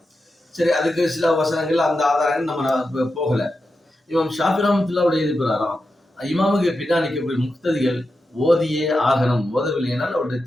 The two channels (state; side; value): normal; both; correlation 0.89